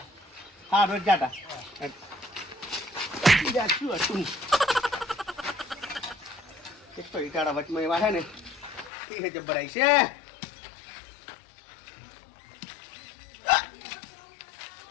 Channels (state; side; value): drops out; right; at 8.9 s